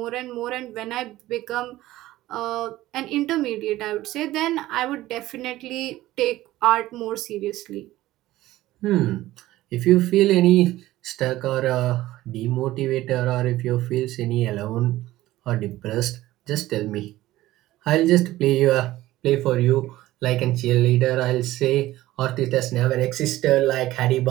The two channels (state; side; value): quieter; left; 16.1 dB